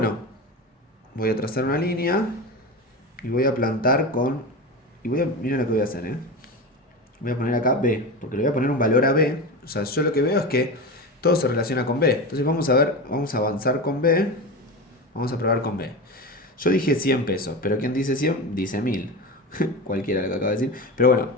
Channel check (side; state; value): both; normal; correlation 0.24